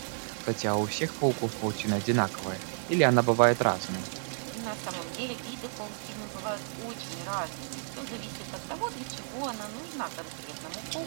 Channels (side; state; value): left; silent; 57 dB below the other